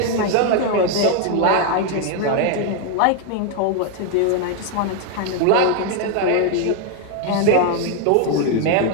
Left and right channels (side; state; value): both; different; correlation 0.00